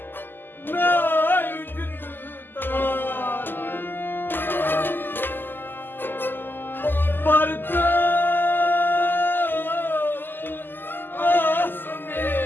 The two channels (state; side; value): late; right; 0.093 ms